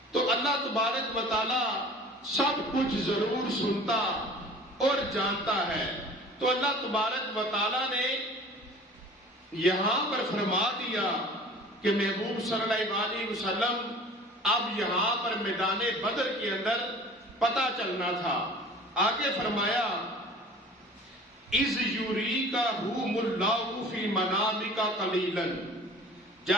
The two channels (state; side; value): normal; both; correlation 0.44